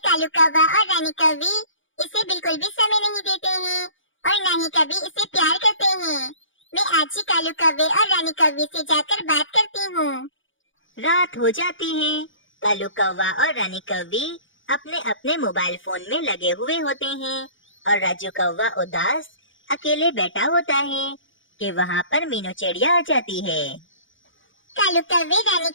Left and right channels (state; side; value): late; right; 0.56 ms